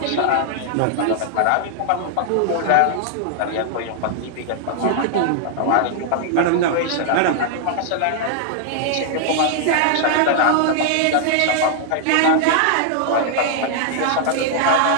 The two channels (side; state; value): both; different; correlation 0.00